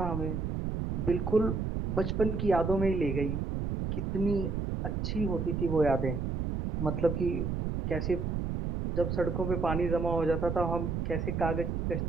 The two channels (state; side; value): noise; right; rumble, 1 dB below the sound